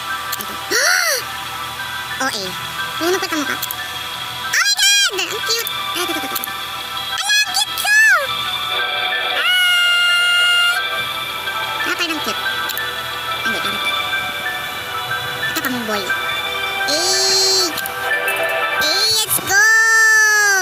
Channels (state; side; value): identical; both; correlation 1.00